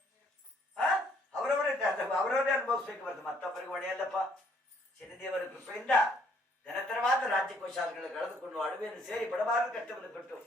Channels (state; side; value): normal; both; correlation 0.64